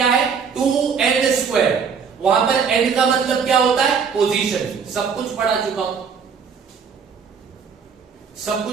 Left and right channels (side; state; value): left; quieter; 6.2 dB